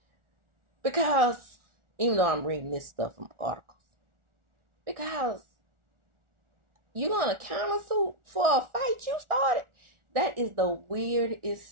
Because, even though I'm reading this stuff from articles, because you're going to countersue for a fight you started? That is the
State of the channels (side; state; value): left; late; 1.4 ms